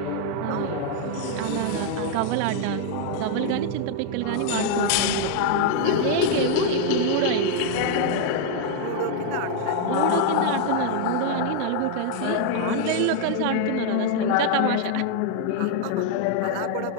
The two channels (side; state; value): both; different; correlation 0.00